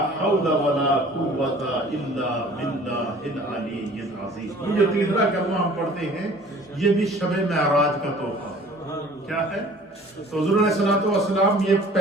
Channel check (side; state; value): both; normal; correlation 0.49